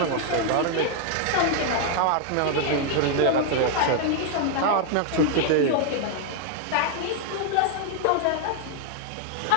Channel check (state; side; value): different; both; correlation 0.00